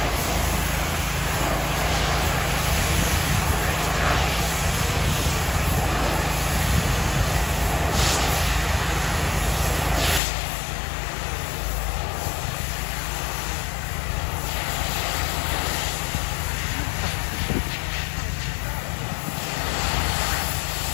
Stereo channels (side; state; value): right; drops out; at 10.2 s